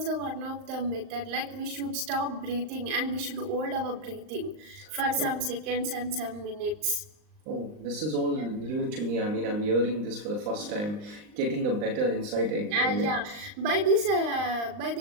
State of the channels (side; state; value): left; late; 39 ms